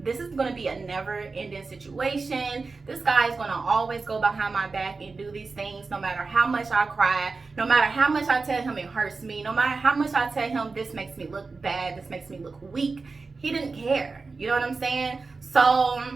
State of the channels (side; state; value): left; quieter; 4.1 dB